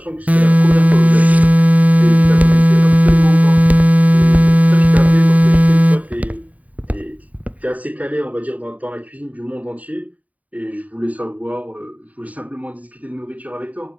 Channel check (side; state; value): left; late; 0.071 ms